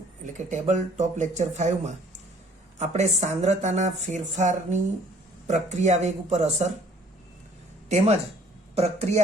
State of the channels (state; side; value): normal; both; correlation 0.57